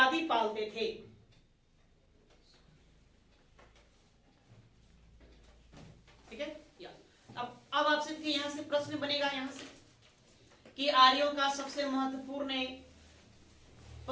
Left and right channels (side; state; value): both; identical; correlation 1.00